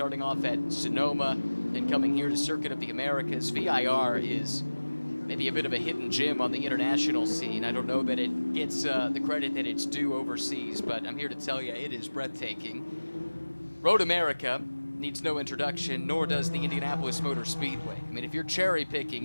off at Sonoma, and coming here to Circuit of the Americas. VIR is maybe a bit of a hidden gem on the international scene. I don't know that it gets the credit that it's due overseas, but I'm here to tell you it is breathtaking. Road America needs no introduction, nor does the Indianapolis Motor Speedway. I mean, if you're cherry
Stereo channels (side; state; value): both; inverted; correlation -1.00